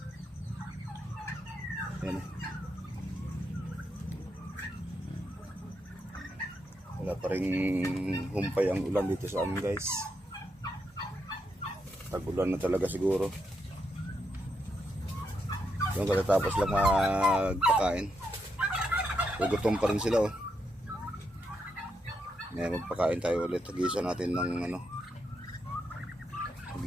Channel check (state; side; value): normal; both; correlation 0.81